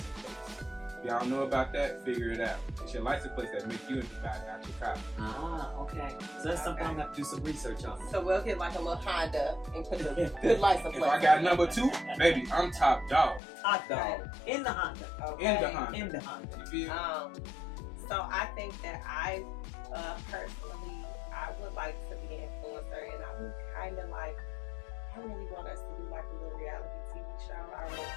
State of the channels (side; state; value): right; drops out; at 13.4 s